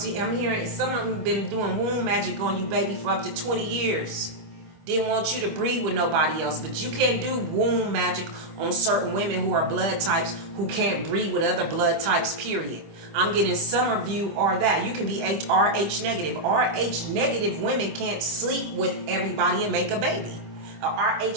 hearing some of them been doing womb magic on you, baby, for up to 20 years. Didn't want you to breed with nobody else. But you can't do womb magic on certain women who are blood types who can't breed with other blood types, period. I'm getting some of you are that. You can be RH negative. RH negative women can't sleep with everybody and make a baby. A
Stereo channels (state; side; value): late; left; 25 ms